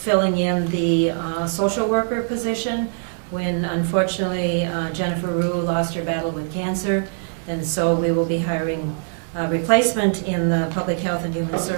in the social worker position when unfortunately Jennifer Rue lost her battle with cancer. And so we will be hiring a replacement in the Public Health and Human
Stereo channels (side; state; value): left; silent; 64 dB below the other